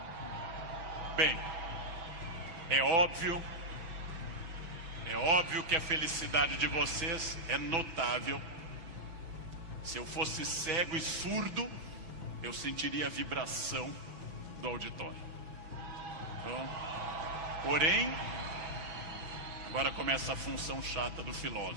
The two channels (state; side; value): late; left; 6.0 ms